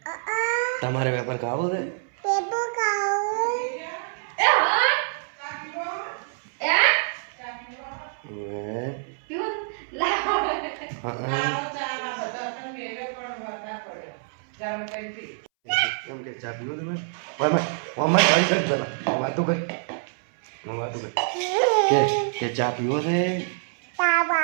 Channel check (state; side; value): silent; left; 61 dB below the other